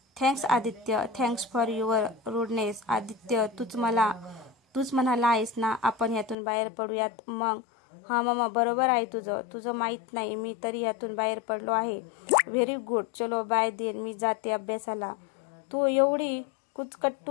Thanks Aditya, thanks for your rudeness. Aditya, तूच म्हणाला आहेस ना आपण यातून बाहेर पडूयात. मग हा मामा, बरोबर आहे तुझं माहीत नाही, मी तरी यातून बाहेर पडलो आहे. Very good. चलो बाय देन, मी जाते अभ्यासाला. तू एवढी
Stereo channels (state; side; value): drops out; right; at 6.4 s